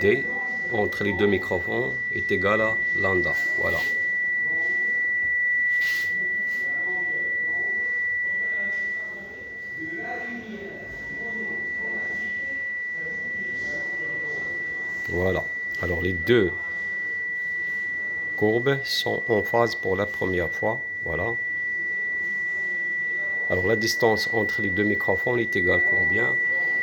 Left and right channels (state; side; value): identical; both; correlation 1.00